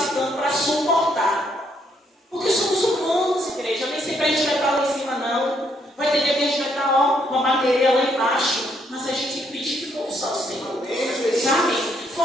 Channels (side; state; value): both; normal; correlation 0.72